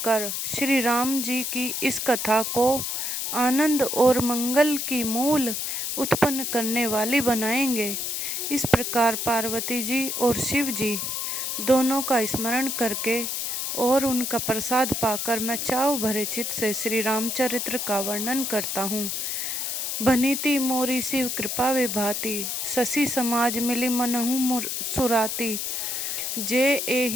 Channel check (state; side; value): noise; left; hiss, 2 dB below the sound